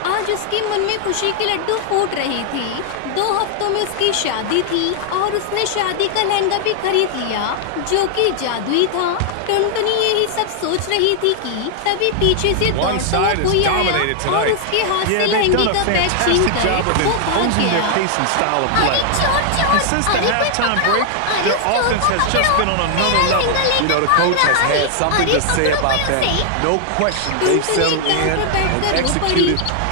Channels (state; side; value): different; both; correlation 0.00